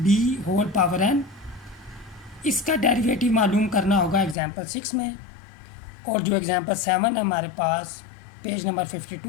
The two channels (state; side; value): drops out; right; at 4.4 s